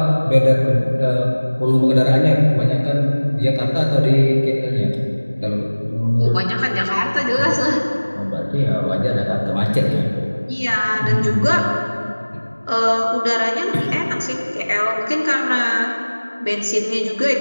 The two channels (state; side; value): inverted; both; correlation -1.00